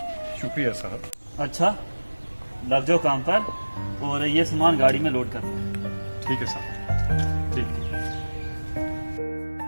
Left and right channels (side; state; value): both; inverted; correlation -1.00